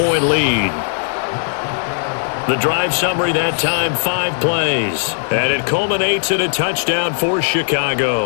lead. The drive summary that time, 5 plays. And it culminates in a touchdown for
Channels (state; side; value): silent; right; digital silence